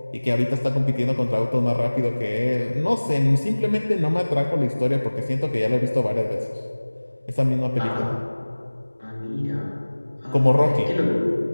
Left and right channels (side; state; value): both; inverted; correlation -1.00